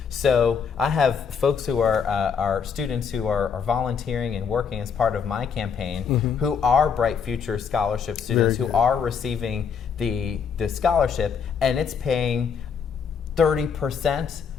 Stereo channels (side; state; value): right; quieter; 6.5 dB